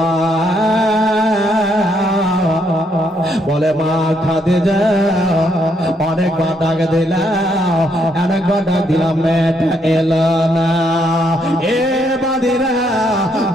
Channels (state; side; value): normal; both; correlation 0.74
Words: বলে মা খাদিজা অনেকবার ডাক দিলাম, অনেকবার ডাক দিলাম, মেয়েটা এলো না। এ বাদিরা,